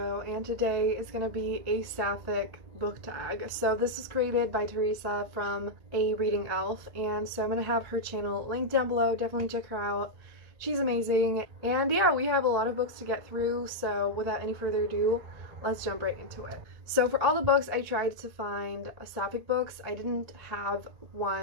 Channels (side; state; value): left; late; 1.9 ms